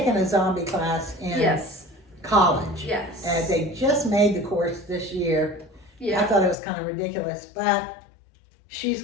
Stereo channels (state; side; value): drops out; right; at 6.6 s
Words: a zombie class in college. Yes. And they just made the course this year. Yeah. I thought it was kind of ridiculous, but she's